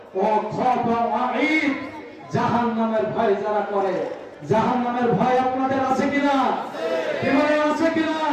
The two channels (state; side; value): identical; both; correlation 1.00